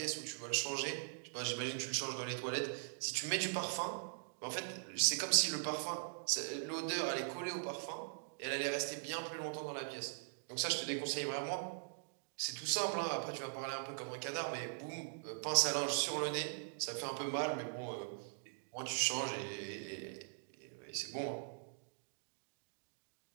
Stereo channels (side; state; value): left; silent; digital silence